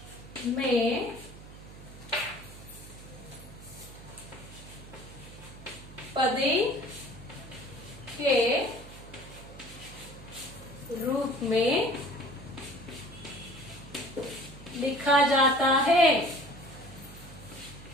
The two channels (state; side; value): noise; right; hum, 16 dB below the sound